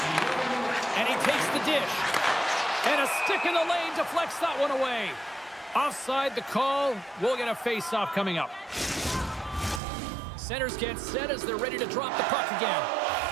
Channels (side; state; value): left; drops out; at 9.8 s